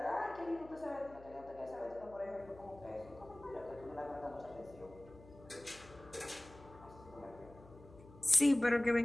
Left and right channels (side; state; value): left; noise; hum, 20 dB below the sound